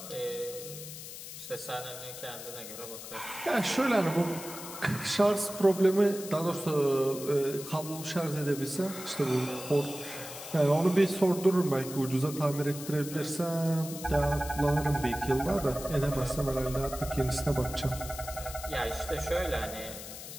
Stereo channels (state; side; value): noise; left; hiss, 11 dB below the sound